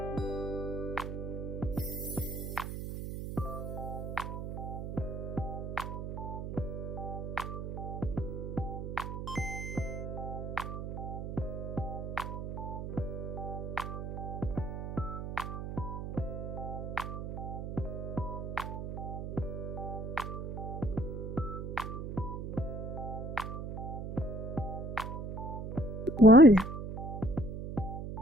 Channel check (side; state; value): right; noise; hum, 5 dB below the sound